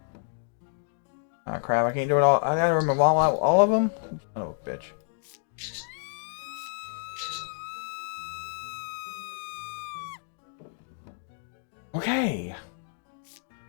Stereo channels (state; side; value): silent; right; digital silence